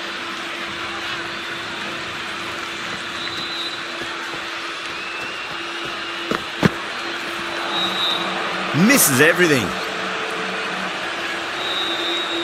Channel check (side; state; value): both; identical; correlation 1.00